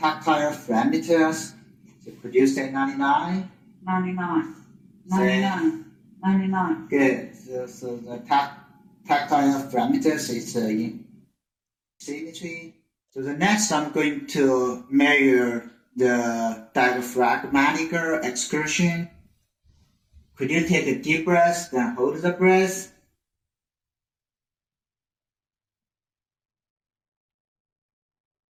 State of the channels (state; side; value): identical; both; correlation 1.00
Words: parameters. So could you say 99? 99. 99. 99. Good. So the tactile parameters is in symmetry. So the next, I'm going to measure the diaphragmatic excursion. Could you take a deep breath, then hold the breath?